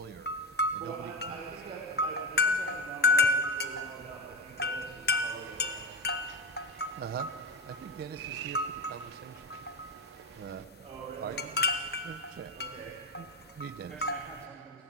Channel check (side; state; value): both; normal; correlation 0.18